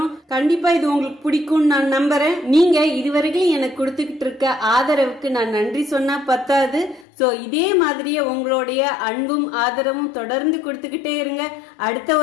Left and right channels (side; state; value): right; drops out; at 7.1 s